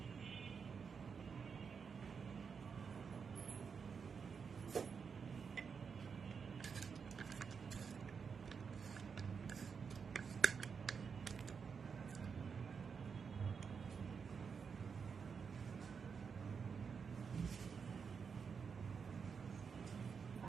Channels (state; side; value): quieter; left; 6.0 dB